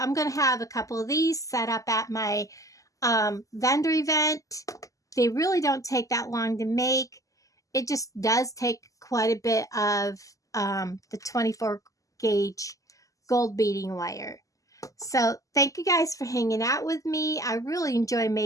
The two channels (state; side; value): late; right; 0.16 ms